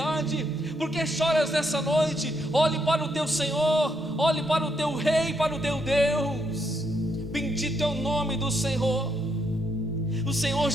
Por que choras nessa noite? Olhe para o teu Senhor, olhe para o teu Rei, para o teu Deus. Bendito é o nome do Senhor. O Senhor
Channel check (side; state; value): both; normal; correlation 0.77